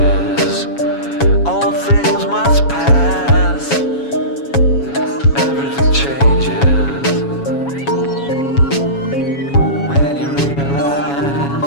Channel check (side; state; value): right; late; 7.2 ms